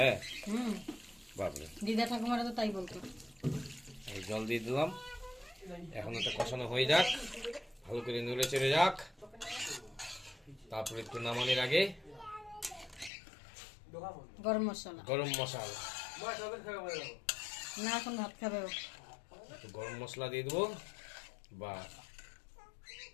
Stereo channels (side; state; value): right; drops out; at 13.1 s